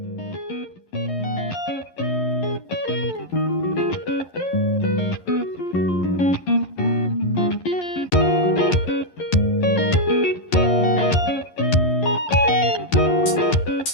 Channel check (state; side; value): late; right; 11 ms